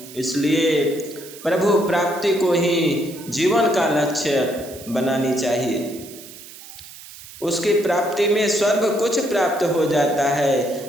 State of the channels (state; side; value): noise; right; hiss, 17 dB below the sound